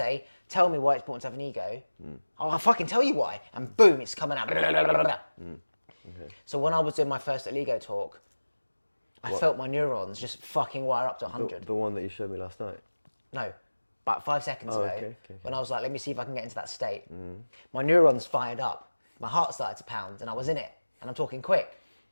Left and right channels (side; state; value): both; inverted; correlation -1.00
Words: tell me why it's important to have an ego, I'll fucking tell you why. And boom, it's coming out. Okay. So when I was doing my first little ego talk, I felt my neurons just fucking wire up to 100. The one that you showed me last night? No, about 5 seconds ago, okay. when I was like, let me see if I can get into that state. My neurons fired up. My heart started to pound and I was in it. And I'm talking quick,